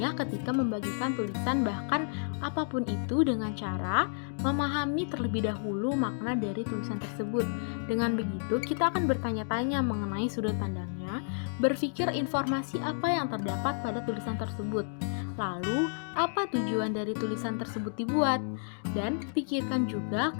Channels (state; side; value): silent; right; digital silence